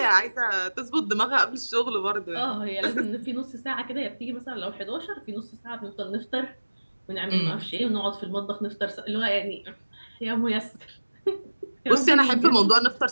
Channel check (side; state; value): both; inverted; correlation -1.00